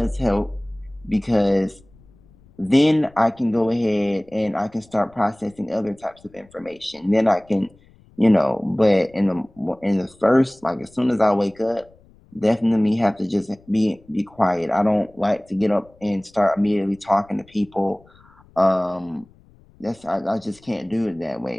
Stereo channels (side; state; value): left; noise; rumble, 28 dB below the sound